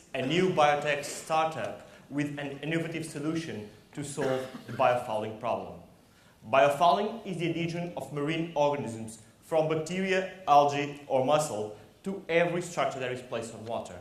a new biotech startup with an innovative solution to solve the biofouling problem. Biofouling is the adhesion of marine organisms from bacteria, algae or mussel to every structure that is placed on water.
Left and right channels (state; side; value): identical; both; correlation 1.00